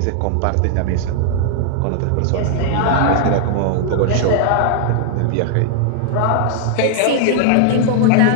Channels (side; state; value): both; different; correlation -0.01